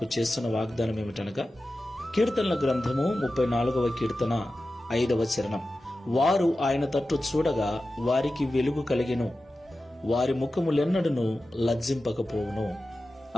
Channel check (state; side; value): normal; both; correlation 0.93